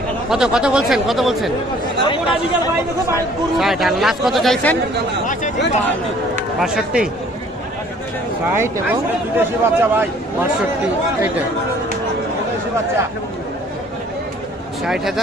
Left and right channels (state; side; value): normal; both; correlation 0.56